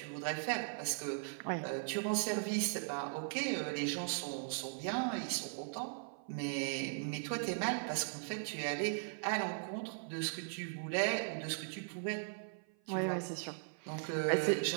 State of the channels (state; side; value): silent; left; 52 dB below the other